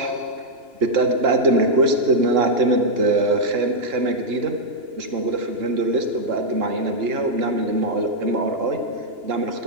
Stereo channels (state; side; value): late; left; 2.9 ms